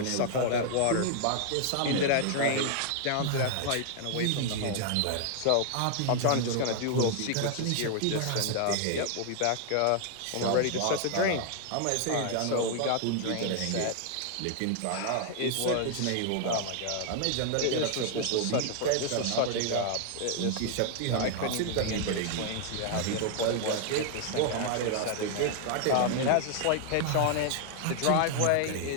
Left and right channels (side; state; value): both; different; correlation 0.00